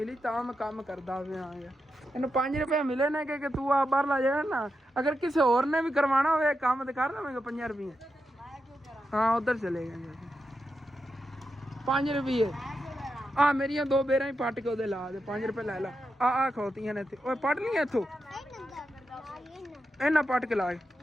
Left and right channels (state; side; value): normal; both; correlation 0.87